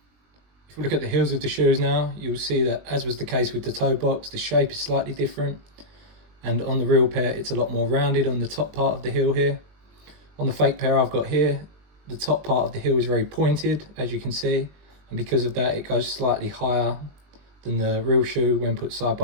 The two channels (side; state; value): left; late; 20 ms